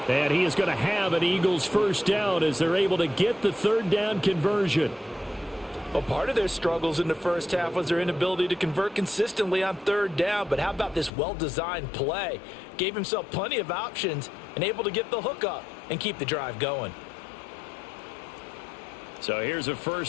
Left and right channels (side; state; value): right; drops out; at 11.1 s